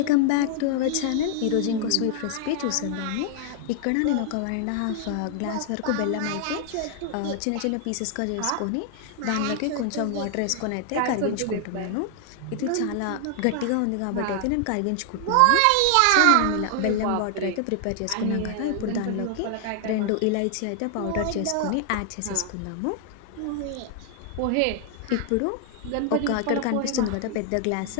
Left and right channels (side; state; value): both; different; correlation 0.00